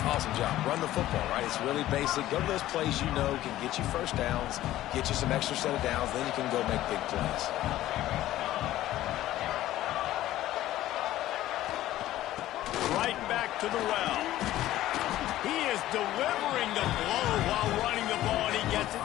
Awesome job. Run the football, right? It's really basic. Go to those plays you know can get you first downs, get you some extra set of downs, then you can go make big plays. Right back to the well. He is delivering the blow while running the ball, and he gets it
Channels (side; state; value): right; quieter; 14.5 dB